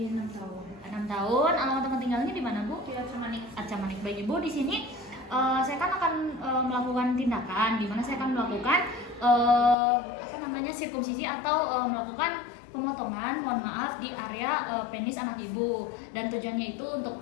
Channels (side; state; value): right; drops out; at 9.8 s